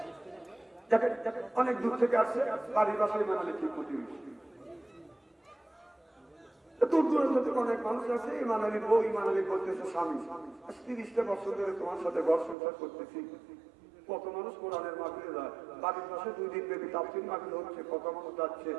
অনেক দূর থেকে আসছে বাড়ির বাসায় ইমাম আলী ঠিক প্রতি দূর দূরান্ত থেকে অনেক মানুষ আছে ইমাম আলী বউ ইমাম আলী বলতেছে স্বামী 30টা বছর ধরে তোমার সাথে ঘর সংসার করতেছি কত মানুষ কোরআনের মাহফিলে যায় বাড়ির পাশে 2 দিন ব্যাপী তাফসীর মাহফিল হচ্ছে কত মানুষ যাচ্ছে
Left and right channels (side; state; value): left; drops out; at 12.6 s